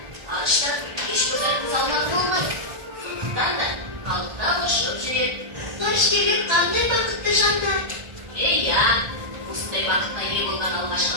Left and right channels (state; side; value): late; left; 1.4 ms